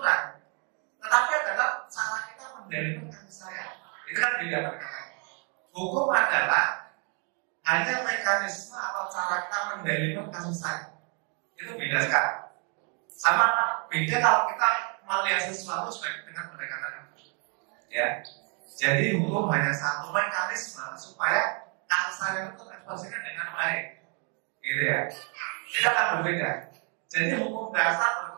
tetapi adalah cara kita mendalilkan kasih sayang. Itu kan beda pendekatannya. Hukum adalah hanya mekanisme atau cara kita mendalilkan kasih sayang. Itu beda sekali. Sama beda kalau kita melihat sesuatu sebagai dengan pendekatan hukum. Ya, jadi hukum hanya satu mekanisme supaya kasih sayang itu terekspresikan dengan baik, gitu ya. Itu akan berbeda. Jadi hukum dasar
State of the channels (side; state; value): left; quieter; 37.1 dB